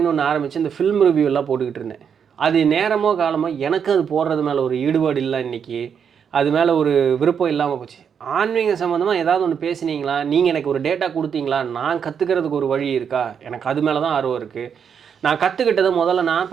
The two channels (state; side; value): quieter; left; 7.3 dB